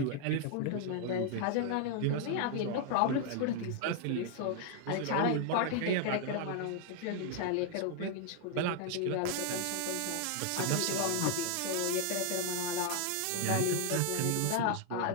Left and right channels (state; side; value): different; both; correlation 0.00